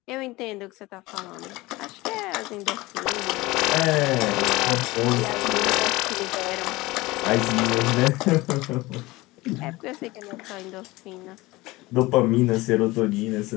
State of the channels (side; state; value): right; quieter; 20.6 dB